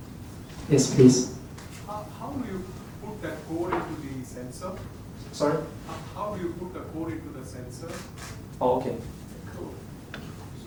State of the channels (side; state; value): both; identical; correlation 1.00